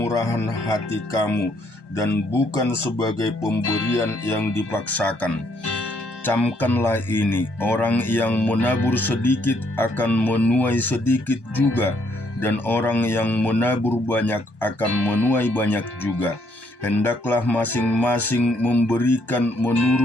hati kamu dan bukan sebagai pemberian yang dipaksakan. Camkanlah ini, orang yang menabur sedikit akan menuai sedikit juga, dan orang yang menabur banyak akan menuai banyak juga. Hendaklah masing-masing memberikan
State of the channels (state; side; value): late; right; 1.2 ms